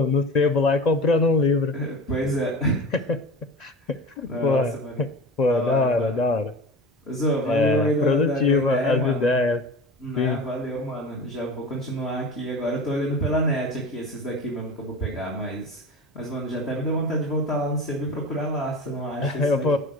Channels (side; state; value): both; normal; correlation 0.34